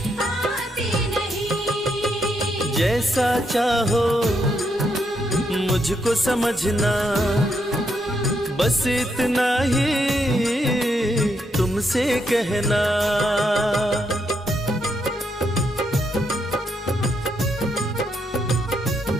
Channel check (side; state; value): both; normal; correlation 0.78